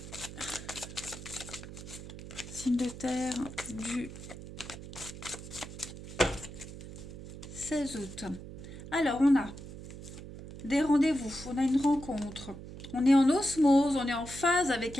Signe de terre du 16 août. Alors, on a des rendez-vous, on a une rencontre. On est en osmose, on est en phase avec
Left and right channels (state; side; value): noise; right; hum, 12 dB below the sound